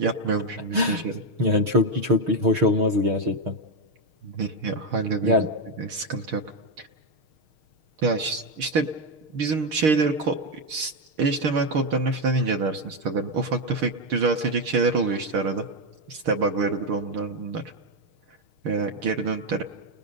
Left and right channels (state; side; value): late; left; 6.5 ms